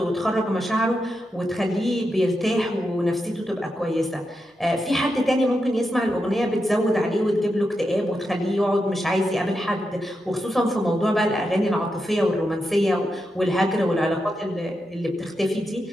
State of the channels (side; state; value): both; normal; correlation 0.86